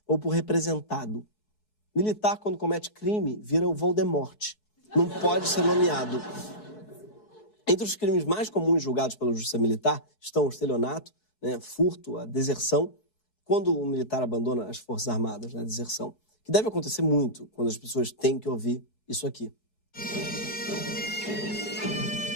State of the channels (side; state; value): right; late; 4.7 ms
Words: ou por representado. Militar, quando comete crime, vira o Voldemort. Não pode ser nomeado. Entre os crimes mais comuns julgados pela Justiça Militar estão o estelionato, né, furto, a deserção, quando o militar abandona as Forças Armadas, né, a deserção, que deve acontecer muito quando as pessoas têm que ouvir isso aqui.